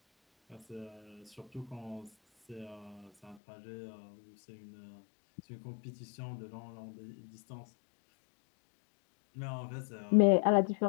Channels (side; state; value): right; drops out; at 3.4 s